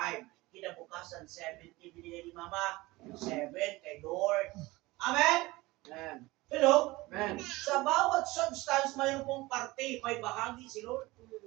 Kinabukasan, 70 binigay ni Mama, 7 kay Lord. Amen? Amen. Hello? Amen. Sa bawat substance, mayroon pong parte, may bahagi si Lord.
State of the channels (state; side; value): quieter; left; 20.6 dB